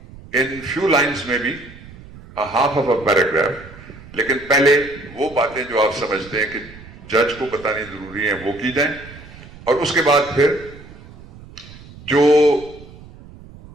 in few lines, maybe a half of a paragraph. لیکن پہلے وہ باتیں جو آپ سمجھتے ہیں کہ جج کو بتانی ضروری ہیں وہ کی جائیں، اور اس کے بعد پھر جو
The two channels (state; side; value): noise; right; rumble, 19 dB below the sound